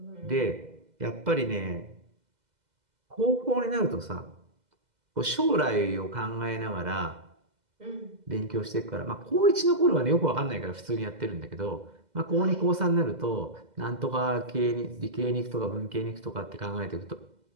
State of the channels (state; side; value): late; left; 2.0 ms